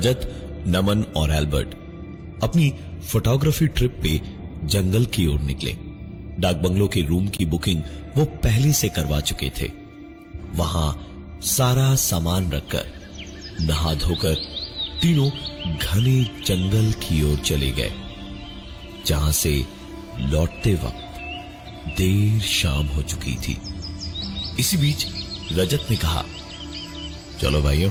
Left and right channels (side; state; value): both; identical; correlation 1.00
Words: नमन और एल्बर्ट अपनी फोटोग्राफी ट्रिप पे जंगल की ओर निकले। डाक बंगलो के रूम की बुकिंग वो पहले से करवा चुके थे। वहां सारा सामान रखकर नहा धोकर तीनों घने जंगल की ओर चले गए, जहां से लौटते वक्त देर शाम हो चुकी थी। इसी बीच रजत ने कहा, चलो भाइयों,